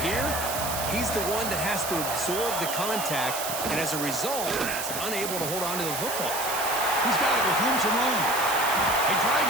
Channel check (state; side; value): noise; right; hiss, 4 dB below the sound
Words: he's the one that has to absorb the contact, and as a result, he's unable to hold on to the football. He's got it with room to run. They drag